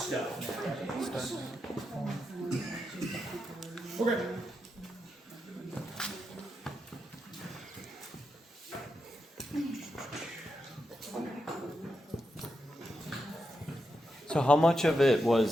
nowadays. Okay. how much of it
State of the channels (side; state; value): both; normal; correlation 0.86